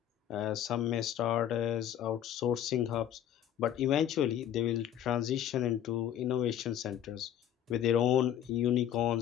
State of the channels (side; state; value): right; quieter; 10.4 dB